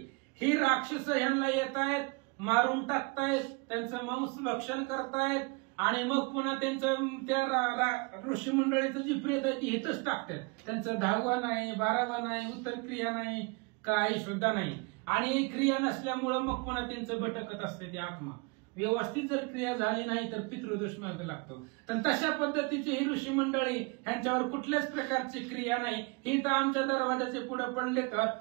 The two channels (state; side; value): quieter; left; 29.9 dB